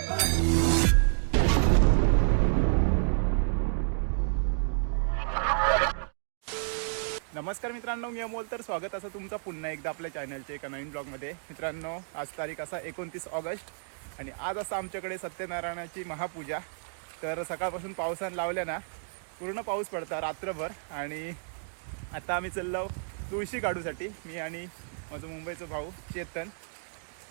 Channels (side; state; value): left; silent; digital silence